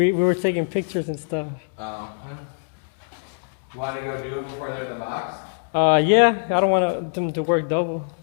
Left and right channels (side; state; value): right; silent; digital silence